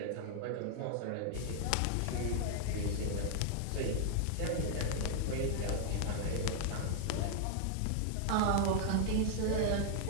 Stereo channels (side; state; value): both; different; correlation -0.01